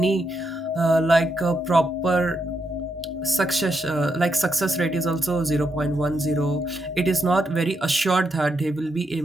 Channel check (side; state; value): both; normal; correlation 0.81